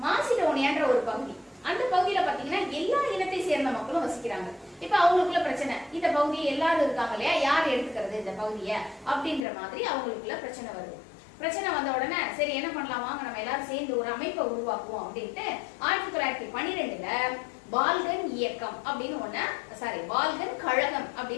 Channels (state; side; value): drops out; right; at 9.5 s